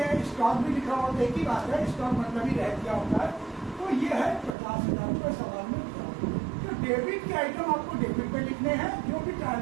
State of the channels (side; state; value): left; drops out; at 4.5 s